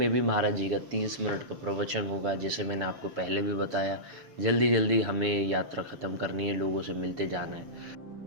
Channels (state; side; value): late; left; 6.9 ms